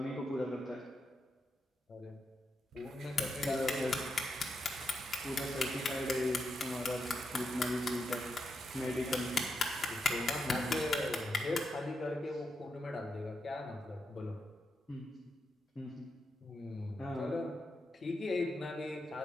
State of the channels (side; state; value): both; normal; correlation 0.84